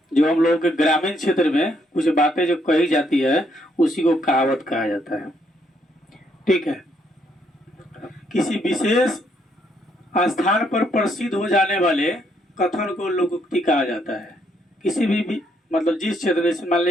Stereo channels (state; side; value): normal; both; correlation 0.72